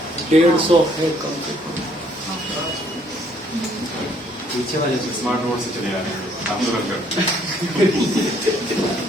150 है कम से कम। पीछे वाले स्मार्ट बोर्ड से चले आ रहे हैं आप लोग।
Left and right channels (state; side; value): normal; both; correlation 0.65